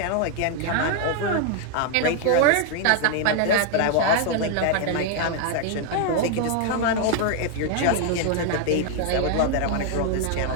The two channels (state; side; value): different; both; correlation 0.00